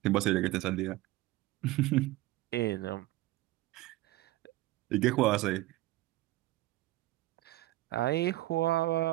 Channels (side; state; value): left; quieter; 17.5 dB